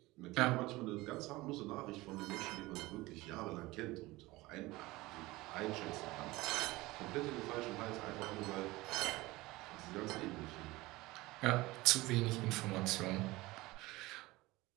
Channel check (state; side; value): quieter; left; 20.3 dB